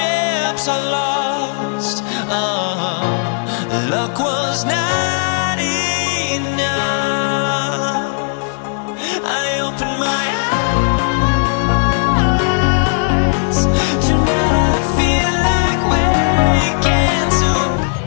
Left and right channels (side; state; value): right; silent; digital silence